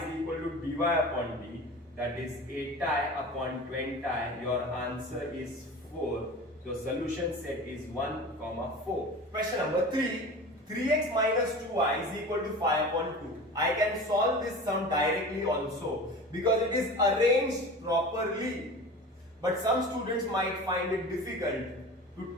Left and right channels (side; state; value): both; normal; correlation 0.35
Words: equal to dy upon d, that is 8 upon 20. Your answer is 4. So solution set is 1, 4. Question number 3. 3x minus 2y is equal to 5 upon 2. I can solve this sum directly also because it is arranged properly. But some students might find it difficult to